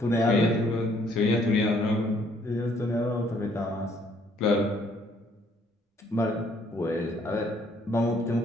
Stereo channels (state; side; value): normal; both; correlation 0.65